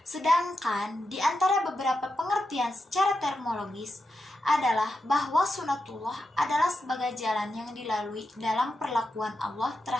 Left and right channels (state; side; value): normal; both; correlation 0.87